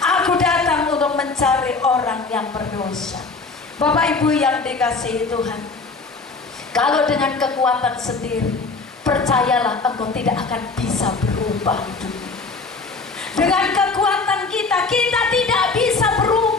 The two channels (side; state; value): right; quieter; 4.0 dB